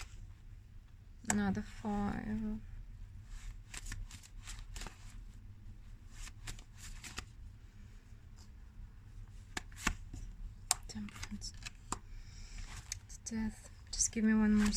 Another 5. Temperance. It's death. Just give me one more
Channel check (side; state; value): both; identical; correlation 1.00